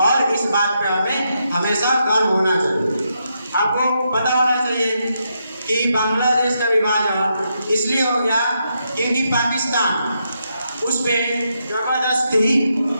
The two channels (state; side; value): inverted; both; correlation -0.81